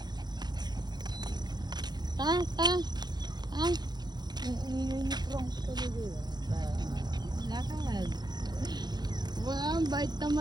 Ta. Lakad. Wow, bait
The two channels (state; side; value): late; left; 0.20 ms